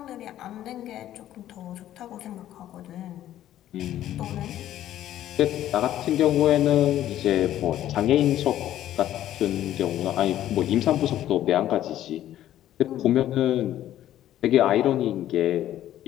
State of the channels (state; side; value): quieter; right; 12.5 dB